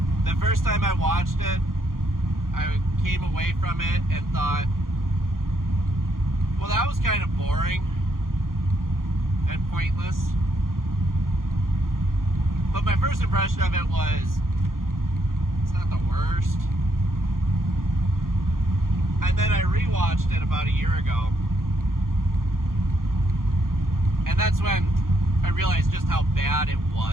The first time I watched it, I came away from it and thought, well, that was kind of boring and pointless. But my first impression of it was, it's not the worst. And then I rewatched it about a year ago. And that's when I realized just how bad it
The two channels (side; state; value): left; late; 0.91 ms